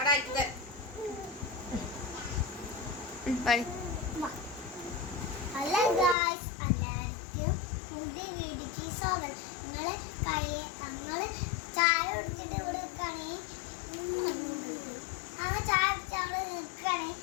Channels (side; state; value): right; drops out; at 6.2 s